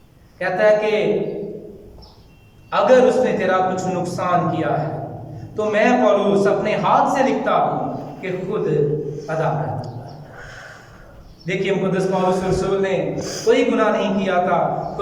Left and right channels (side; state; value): both; identical; correlation 1.00